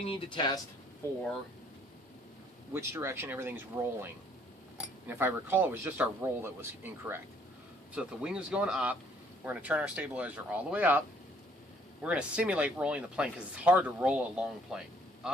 need to test for which direction everything's rolling. And if I recall, it was just our roll that was incorrect. So if the wing is going up, we're going to turn our stabilizer all the way up. We're going to simulate rolling the plane because it's hard to roll a long plane.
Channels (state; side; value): normal; both; correlation 0.63